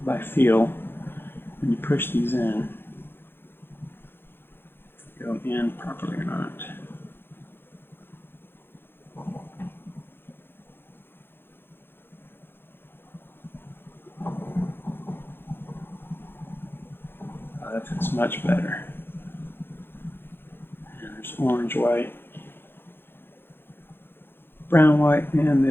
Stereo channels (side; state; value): right; late; 0.10 ms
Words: by feel when you push these in, go in properly or not. That fits much better. And there's orange, white, brown, white, and